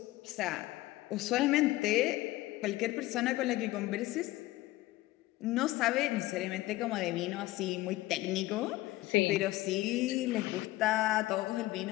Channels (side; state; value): right; quieter; 17.9 dB